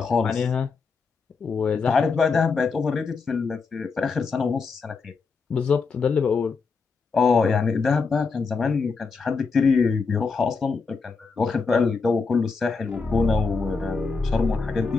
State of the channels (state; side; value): quieter; right; 4.7 dB